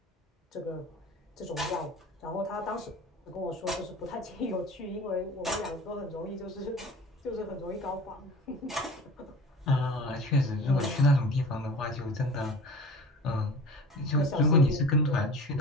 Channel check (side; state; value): both; normal; correlation 0.39